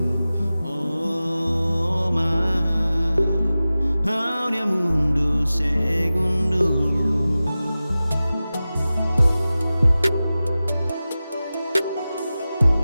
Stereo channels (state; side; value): inverted; both; correlation -0.96